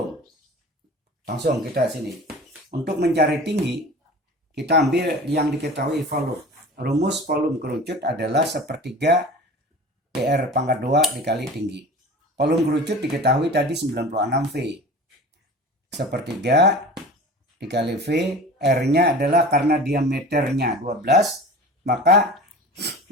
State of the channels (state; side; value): normal; both; correlation 0.37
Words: Langsung kita sini. Untuk mencari tinggi, kita ambil yang diketahui volume. Rumus volume kerucut adalah sepertiga PR pangkat 2 dikali tinggi. Volume kerucut diketahui tadi 96 V. Sepertiga dikali V, R-nya adalah karena diameternya 12, maka